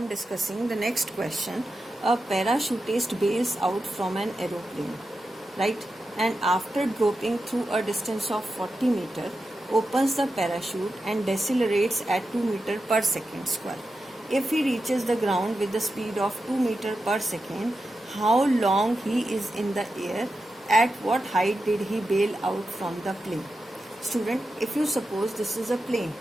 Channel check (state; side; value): normal; both; correlation 0.90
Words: discussing the next question. A parachutist bails out from an aeroplane, right? And after dropping through a distance of 40 meter, opens the parachute and decelerates at 2 meter per second square. If he reaches the ground with the speed of 2 meter per second, how long he is in the air? At what height did he bail out from the plane? Student, if you suppose this is a plane,